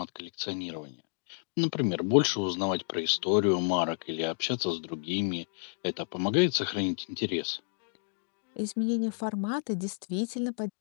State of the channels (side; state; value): right; silent; 57 dB below the other